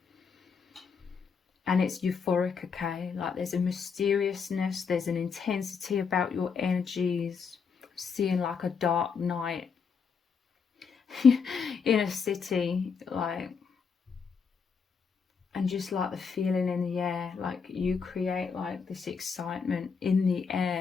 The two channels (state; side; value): quieter; right; 5.9 dB